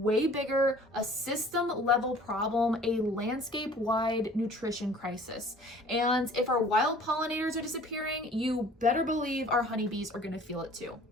bigger, a system level problem, a landscape wide nutrition crisis. And if our wild pollinators are disappearing, you better believe our honeybees are going to feel it too.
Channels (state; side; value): normal; both; correlation 0.50